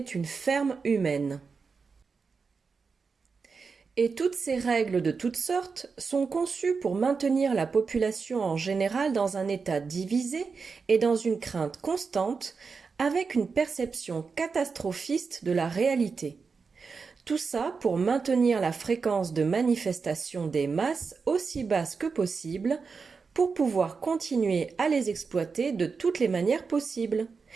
ferme humaine. Et toutes ces règles de toutes sortes sont conçues pour maintenir la population en général dans un état divisé et dans une crainte constante, avec une perception catastrophiste de la réalité. Tout ça pour maintenir la fréquence de manifestation des masses aussi basse que possible, pour pouvoir continuer à les exploiter de toutes les manières possibles.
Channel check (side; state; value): left; quieter; 5.0 dB